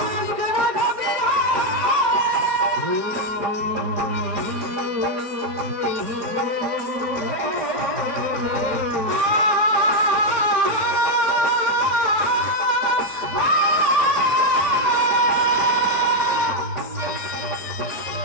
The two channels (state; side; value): late; left; 5.0 ms